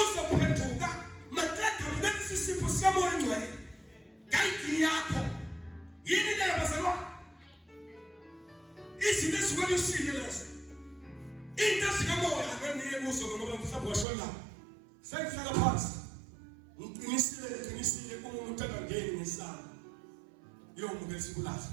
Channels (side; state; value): left; drops out; at 14.1 s